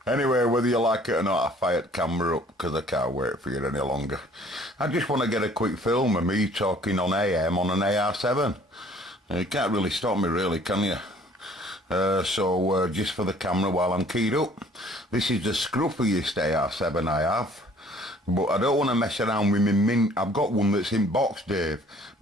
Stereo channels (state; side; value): normal; both; correlation 0.55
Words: Anyway, whether you like it or not, I fired camera up because I can't wait for you any longer. I just want to get a quick film of me talking on AM on an AR7. You can't really stop me, really, can you? So just for the camera while I'm keyed up. This is the scruffiest AR7 I have. But I don't want to mess around with my mint. I've got one that's in box, Dave,